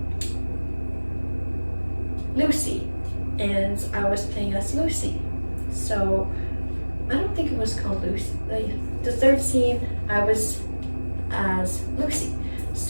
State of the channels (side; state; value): both; inverted; correlation -1.00